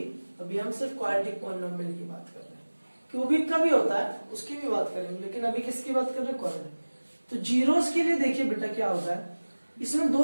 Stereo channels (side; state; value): both; inverted; correlation -1.00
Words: अभी हम सिर्फ क्वाड्रेटिक पॉलिनोमियल की बात कर रहे हैं। क्यूबिक का भी होता है, उसकी भी बात करेंगे, लेकिन अभी किसकी बात कर रहे हैं, क्वाड्रेटिक। तो जीरोस के लिए देखिए बेटा क्या होता है, इसमें